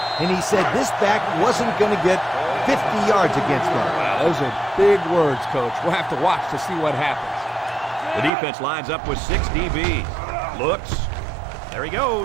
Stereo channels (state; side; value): drops out; left; at 8.3 s